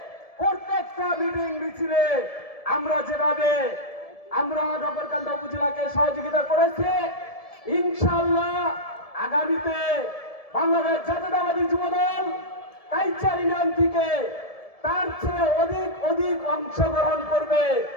প্রত্যেকটা মিটিং মিছিলে আমরা যেভাবে নগরকান্দা উপজেলাকে সহযোগিতা করেছি, ইনশাআল্লাহ আগামীতে বাংলাদেশ জাতীয়তাবাদী যুবদল কাইচার ইউনিয়ন থেকে তার চেয়ে অধিক অংশগ্রহণ করবে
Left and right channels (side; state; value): right; late; 1.7 ms